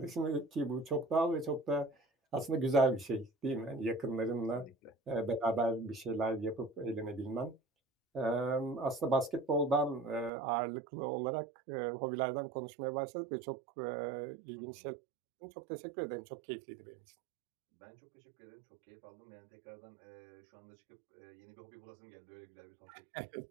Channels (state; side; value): drops out; left; at 10.3 s